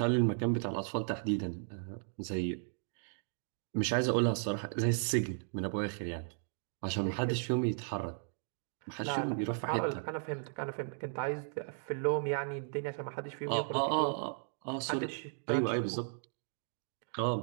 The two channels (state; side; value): silent; left; digital silence